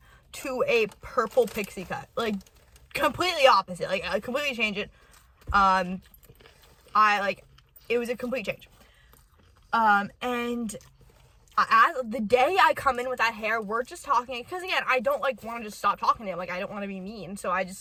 to a purple pixie cut. Like, completely opposite. Like, I completely changed it. It was a complete change. And as the day I come in with that hair, we're just talking, because again, I don't, like, want to just stop talking to him. Like, I don't want to be mean, so I just,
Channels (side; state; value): both; identical; correlation 1.00